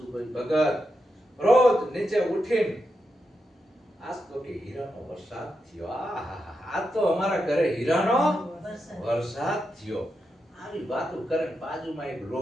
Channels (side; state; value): both; normal; correlation 0.86